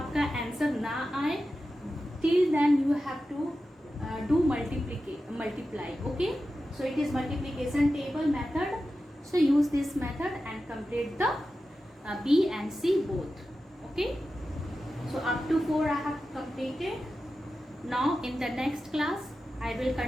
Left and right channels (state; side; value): normal; both; correlation 0.92